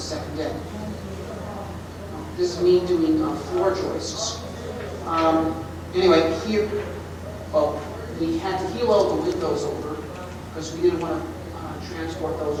deck. This is me doing floor joists. Anyway, here, well, we had to heel all the windows over because we didn't want to transport those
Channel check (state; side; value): identical; both; correlation 1.00